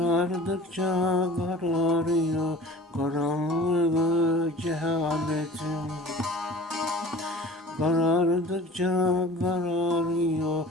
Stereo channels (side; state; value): both; normal; correlation 0.43